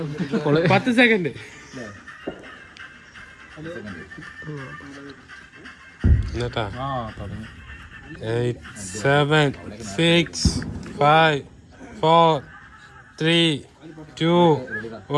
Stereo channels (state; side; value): identical; both; correlation 1.00